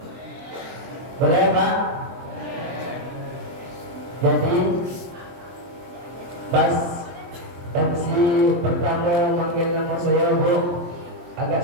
Boleh, Pak? Jadi pas MC pertama manggil nama saya, Bu, agak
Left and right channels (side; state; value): left; late; 23 ms